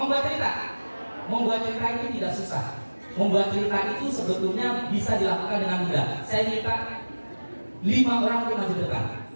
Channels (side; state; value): both; inverted; correlation -1.00